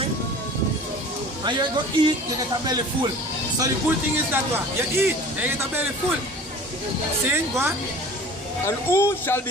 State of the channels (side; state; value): both; normal; correlation 0.42